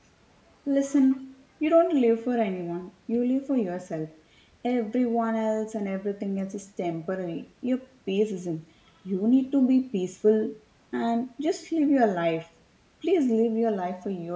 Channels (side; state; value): both; identical; correlation 1.00